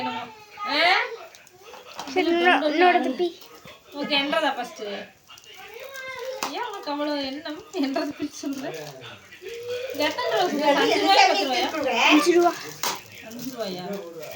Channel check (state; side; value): identical; both; correlation 1.00